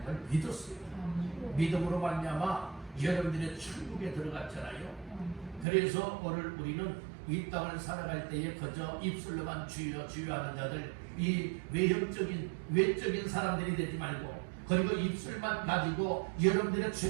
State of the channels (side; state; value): left; drops out; at 5.7 s